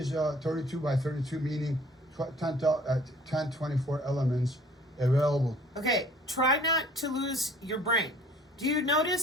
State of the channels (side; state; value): both; normal; correlation 0.53